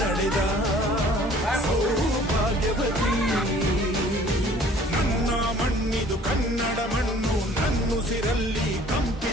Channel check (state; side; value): normal; both; correlation 0.53